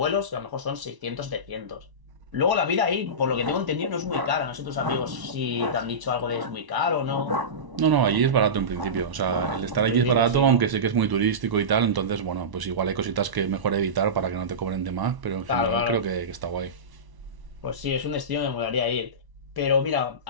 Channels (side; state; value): left; late; 1.0 ms